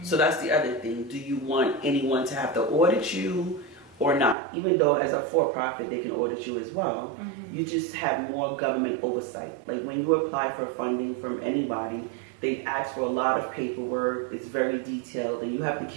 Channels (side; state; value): left; drops out; at 4.4 s